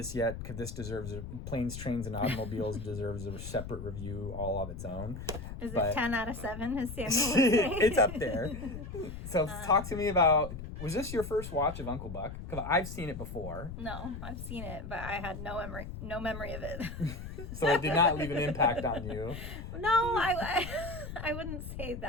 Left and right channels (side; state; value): left; noise; rumble, 9 dB below the sound